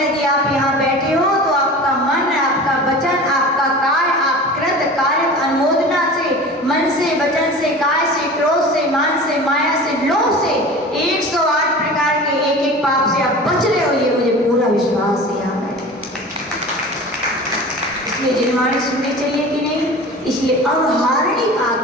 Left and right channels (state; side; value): normal; both; correlation 0.37